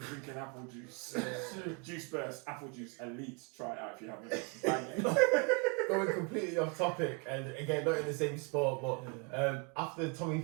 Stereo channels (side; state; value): left; quieter; 34.4 dB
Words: apple juice. Juice Burst, apple juice, elite. Try it out if you haven't. Bang it. Going completely off topic, and again, not in the same sport, but after Tommy